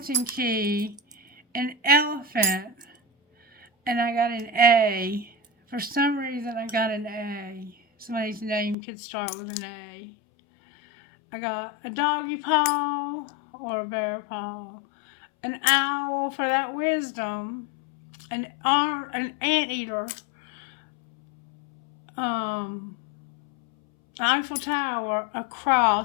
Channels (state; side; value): drops out; right; at 8.8 s